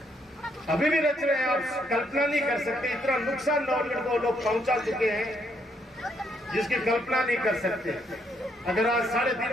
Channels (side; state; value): both; normal; correlation 0.73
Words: अभी भी रच रहे हैं। आप कल्पना नहीं कर सकते इतना नुकसान नवलगढ़ को लोग पहुंचा चुके हैं जिसकी कल्पना नहीं कर सकते। अगर आज